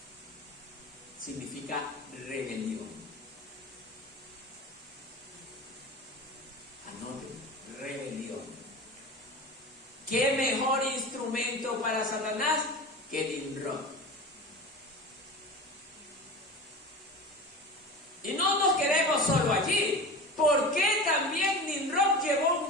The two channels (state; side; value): normal; both; correlation 0.31